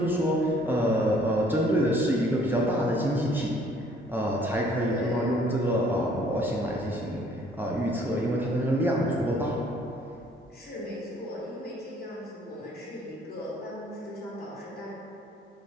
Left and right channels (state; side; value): normal; both; correlation 0.59